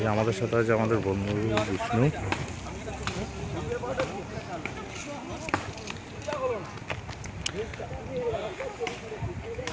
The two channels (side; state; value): both; identical; correlation 1.00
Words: আমাদের সাথে আছে আমাদের বন্ধু বিষ্ণু।